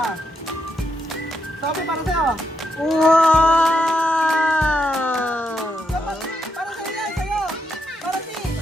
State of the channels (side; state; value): both; normal; correlation 0.81